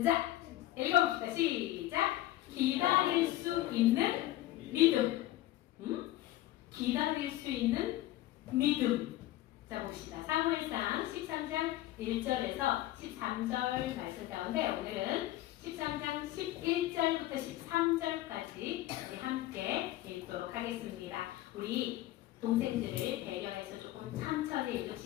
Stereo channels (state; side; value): quieter; right; 15.3 dB